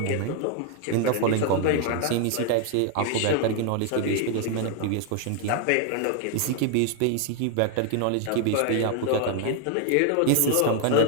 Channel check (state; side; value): different; both; correlation 0.00